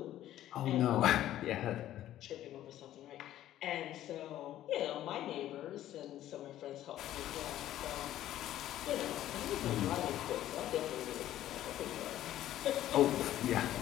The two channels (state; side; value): quieter; right; 13.0 dB